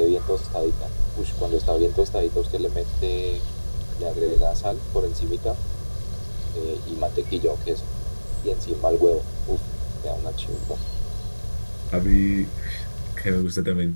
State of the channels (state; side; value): inverted; both; correlation -1.00